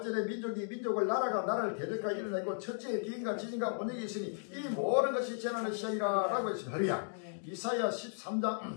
민족을 나라가 나라를 대적하여 일어나고 첫째의 기근과 지진과 온역이 있으니 이 모든 것이 재난의 시작이라 라고 했습니다. 할렐루야. 이사야 13장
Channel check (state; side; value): silent; right; digital silence